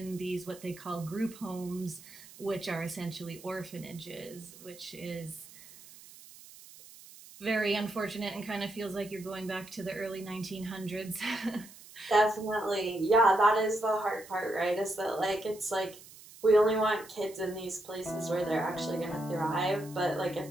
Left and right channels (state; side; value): noise; right; hiss, 19 dB below the sound